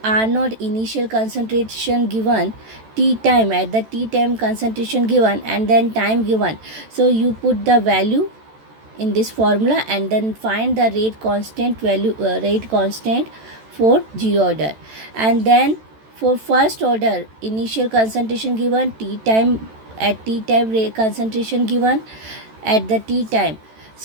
R0 initial concentration given, T time at the T time concentration given, and then time given. So you put the value in this formula and then find the rate constant value, rate constant for zero order. And then for first order, initial concentration given, T time at T time rate concentration given at the T time.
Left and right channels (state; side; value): late; left; 14 ms